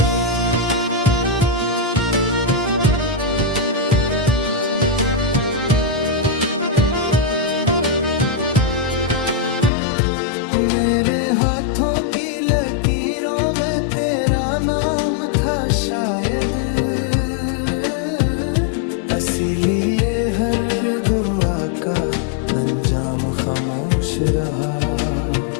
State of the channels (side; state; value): right; drops out; at 9.7 s